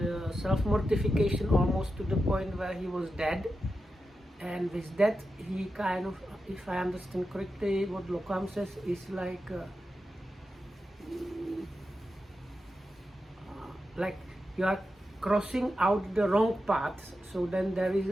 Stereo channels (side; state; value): both; normal; correlation 0.90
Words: self-mortification almost to the point where he was dead. And with that he kind of, if I understand correctly, what Lokam says is like you are crossing out the wrong path, so then there is